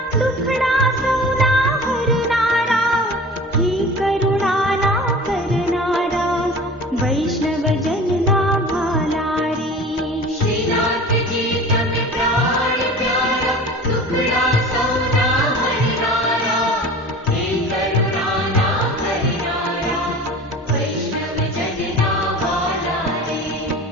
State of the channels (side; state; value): both; normal; correlation 0.39